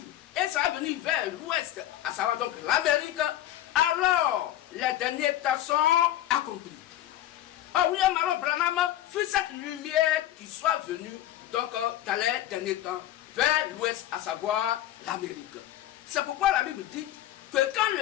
et ça va venir vers l'ouest, à savoir donc l'Amérique, alors les derniers temps sont accomplis. Or, William Marion Branham fut cette lumière qui soit venue donc dans les derniers temps vers l'ouest, à savoir l'Amérique. C'est pourquoi la Bible dit que quand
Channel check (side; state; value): right; quieter; 13.2 dB